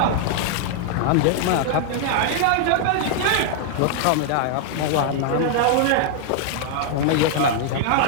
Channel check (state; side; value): different; both; correlation 0.00